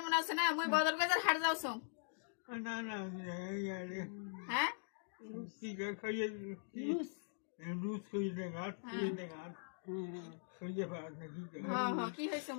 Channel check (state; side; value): silent; right; digital silence